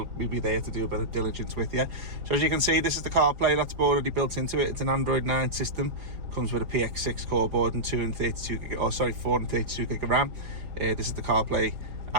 be there to do a bit of diligence with you. So as you can see, this is the CarPlay that's already built into it. It's an Android 9 system. Comes with a PX6 core board and 432 gig of RAM. This is the CarPlay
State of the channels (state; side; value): late; left; 4.7 ms